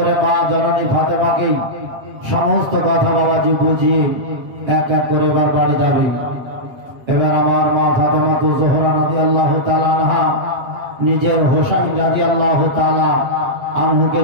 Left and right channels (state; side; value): late; left; 8.3 ms